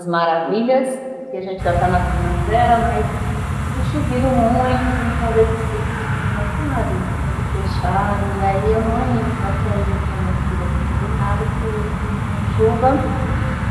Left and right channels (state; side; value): identical; both; correlation 1.00